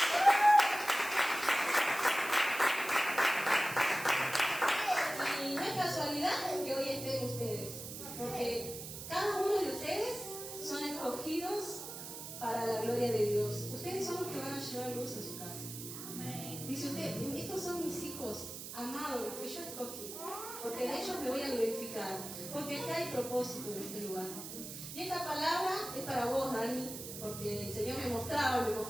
Y no es casualidad que hoy estén ustedes, porque cada uno de ustedes son escogidos para la gloria de Dios. Ustedes son los que van a llevar luz a su casa. Dice usted, estos son mis hijos amados, los que yo escogí, porque de ellos me voy a glorificar, porque acá hay propósito en este lugar. Y esta palabra es para vos, Dani, porque el Señor me mostraba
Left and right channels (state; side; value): noise; right; hiss, 9 dB below the sound